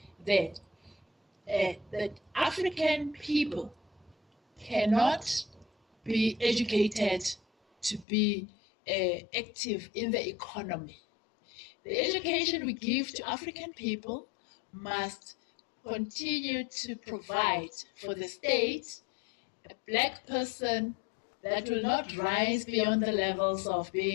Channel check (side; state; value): right; drops out; at 8.1 s